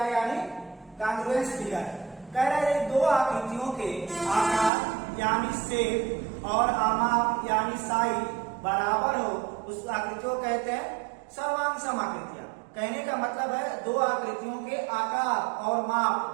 यानी कांग्रुएंस फिगर। कह रहे हैं दो आकृतियों के आकार यानी शेप और आमाप यानी साइज बराबर हो उस आकृति को कहते हैं सर्वांग सम आकृतियां। कहने का मतलब है दो आकृतियों के आकार और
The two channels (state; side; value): drops out; left; at 4.7 s